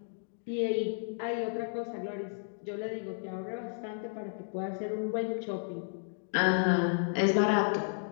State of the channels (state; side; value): silent; right; digital silence